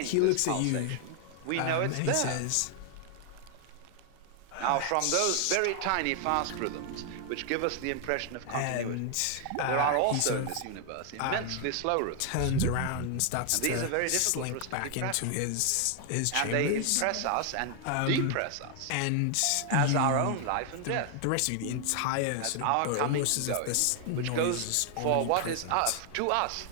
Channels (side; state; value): both; different; correlation 0.00